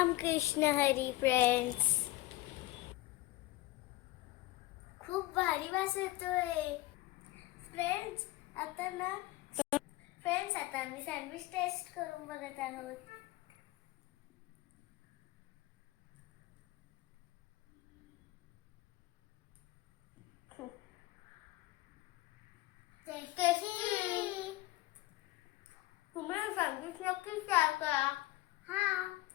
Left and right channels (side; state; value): right; quieter; 18.6 dB